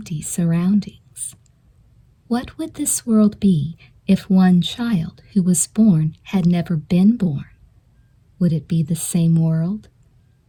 surroundings. What would this world be if one child who was born had never been born? Would it be the same world?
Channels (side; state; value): both; identical; correlation 1.00